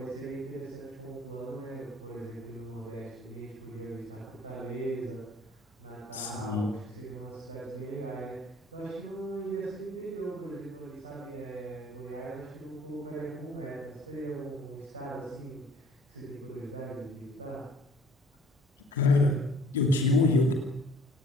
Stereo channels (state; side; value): normal; both; correlation 0.55